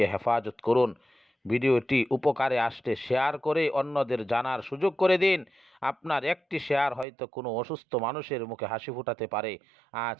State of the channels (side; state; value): left; drops out; at 7.1 s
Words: হেফাজত করুন। ভিডিওটি উপকারে আসলে শেয়ার করে অন্যদের জানার সুযোগ করে দিন। আপনার একটি শেয়ার হয়তো কোনো অসুস্থ মানুষের মুখে হাসি ফোটাতে পারে। আজ